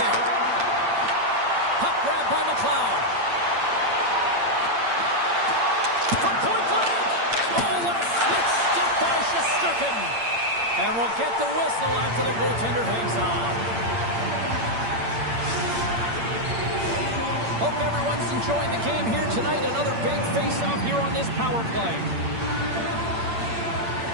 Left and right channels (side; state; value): left; late; 8.7 ms